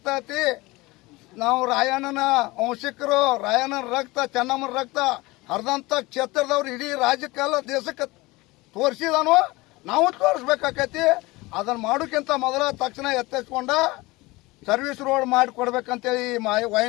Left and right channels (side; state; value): right; quieter; 21.8 dB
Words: ನಾವು ರಾಯಣ್ಣನ ವಂಶಿಕರು, ರಾಯಣ್ಣನ ರಕ್ತ, ಚೆನ್ನಮ್ಮನ ರಕ್ತ ಹರಿದಂತ ಕ್ಷೇತ್ರದವ್ರು ಇಡೀ ರಾಜ್ಯಕ್ಕೆಲ್ಲ ದೇಶಕ್ಕೆ ತೋರಿಸಿದಾನು, ನಾವು ತೋರಿಸ್ಬೇಕಾಕೈತಿ. ಅದನ್ನ ಮಾಡೋಕ್ಕಿಂತ ಮೊದಲ ತಕ್ಷಣ ಎತ್ತಿಸ್ಕೊಂಡ ಸರ್ವಿಸ್ ರೋಡ್ ಮಾಡಿ ಕೊಡ್ಬೇಕಂತೇಳಿ